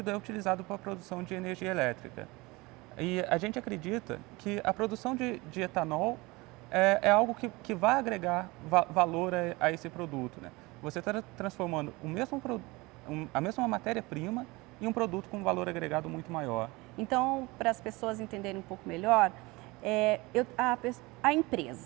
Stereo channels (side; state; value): left; quieter; 23.2 dB